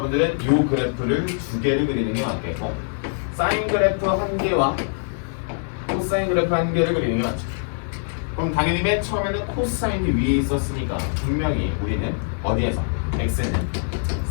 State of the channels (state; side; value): silent; right; digital silence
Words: 이 그래프를 두 개를 그리는 게 맞겠고 사인 그래프 한 개와 코사인 그래프 한 개를 그리는 게 맞죠. 그럼 당연히 맨 처음에는 코사인이 위에 있었으니까 분명히 우리는 어디에서? x는